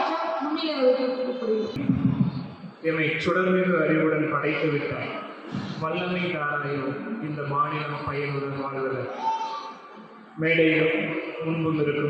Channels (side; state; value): both; identical; correlation 1.00